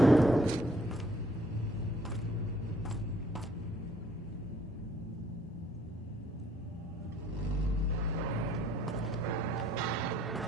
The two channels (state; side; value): normal; both; correlation 0.62